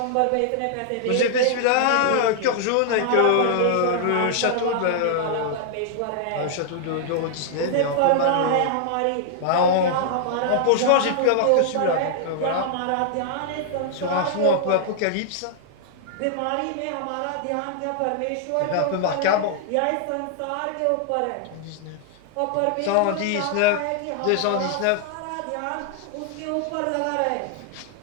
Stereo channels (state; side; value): different; both; correlation -0.01